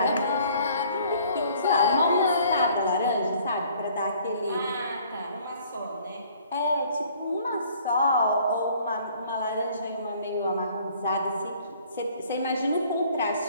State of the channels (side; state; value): both; inverted; correlation -0.57